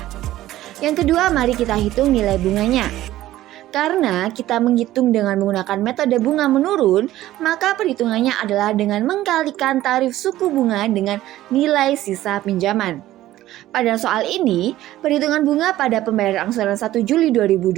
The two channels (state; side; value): quieter; left; 14.7 dB